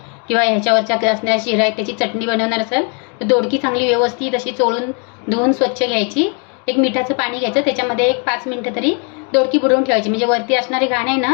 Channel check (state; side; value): quieter; right; 37.9 dB